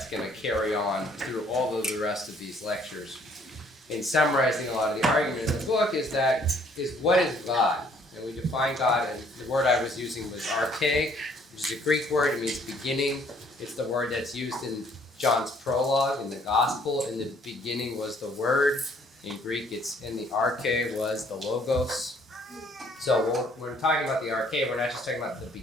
going to carry on through all of the rest of these lectures, in summarizing a lot of the argument in the book, is what is God? And we define God, and the word I was using was arche, which is a Greek word. It means beginning. It's the word that's used in John's prologue in the gospel. In the beginning was the word. In Greek, it's in the arche was the logos. So when we're talking about the arche, we're not just talking about the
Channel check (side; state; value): both; normal; correlation 0.62